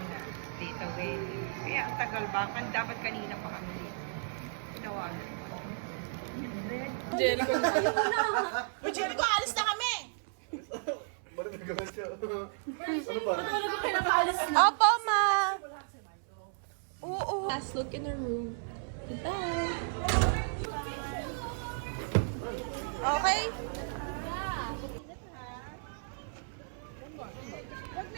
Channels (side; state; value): left; silent; 55 dB below the other